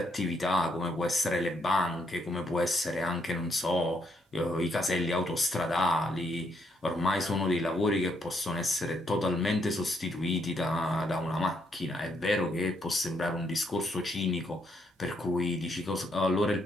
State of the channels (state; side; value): normal; both; correlation 0.74